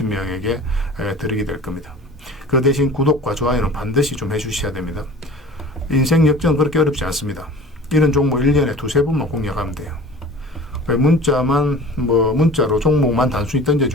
드리게 될 겁니다. 그 대신 구독과 좋아요는 반드시 좀 해주셔야 됩니다. 인생 역전 그렇게 어렵지 않습니다. 이런 종목 1년에 두세 번만 공략하면 돼요. 문자로 종목만 단순히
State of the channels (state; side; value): normal; both; correlation 0.42